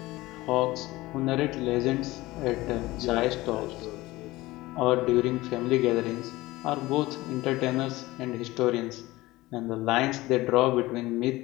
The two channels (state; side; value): quieter; right; 19.1 dB